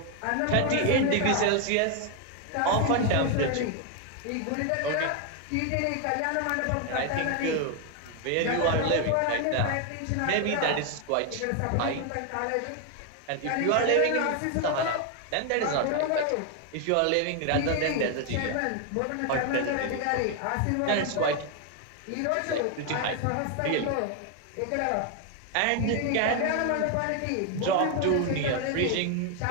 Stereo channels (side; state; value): both; different; correlation 0.01